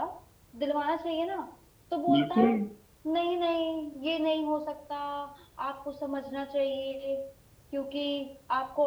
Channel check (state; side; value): identical; both; correlation 1.00